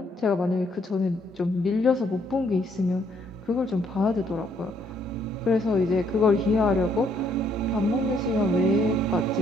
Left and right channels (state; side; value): normal; both; correlation 0.69